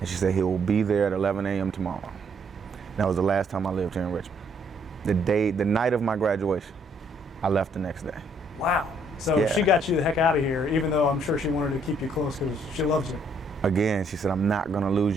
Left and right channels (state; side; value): normal; both; correlation 0.68